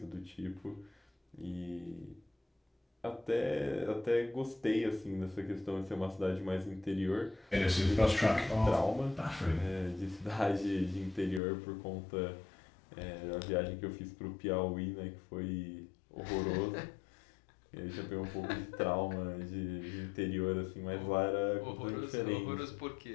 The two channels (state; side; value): drops out; right; at 11.4 s